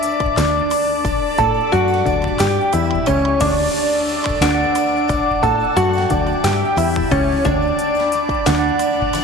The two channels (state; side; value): normal; both; correlation 0.53